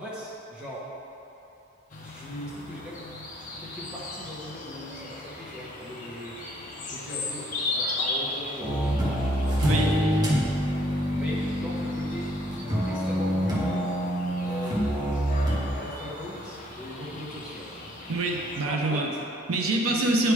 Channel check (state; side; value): normal; both; correlation 0.65